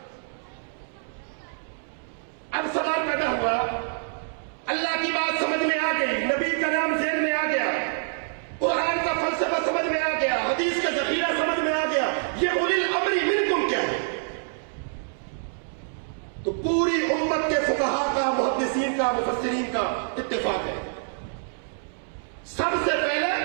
اب سوال پیدا ہوا, اللہ کی بات سمجھ میں آ گئی, نبی کا نام ذہن میں آ گیا, قرآن کا فلسفہ سمجھ میں آ گیا, حدیث کا ذخیرہ سمجھ میں آ گیا, یہ اولی الامر منکم کیا ہے؟ تو پوری امت کے فقہا کا, محدثین کا, مفسرین کا اتفاق ہے. سب سے پہلے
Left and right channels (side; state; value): left; silent; digital silence